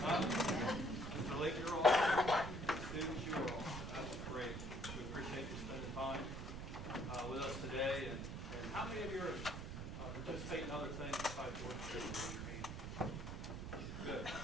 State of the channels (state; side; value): noise; right; rumble, 6 dB below the sound